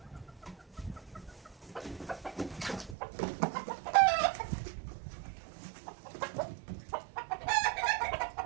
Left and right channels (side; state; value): left; drops out; at 3.0 s